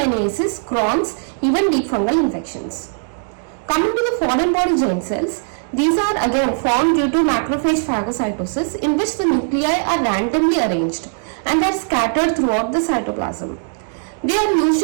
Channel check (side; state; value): left; silent; digital silence